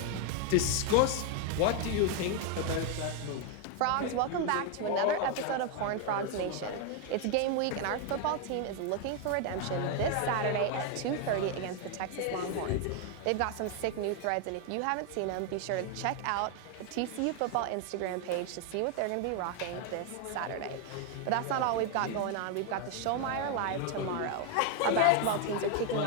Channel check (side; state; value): both; different; correlation 0.01